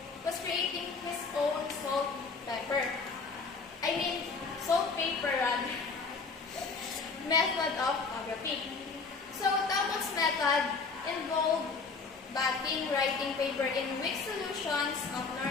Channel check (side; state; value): right; quieter; 4.5 dB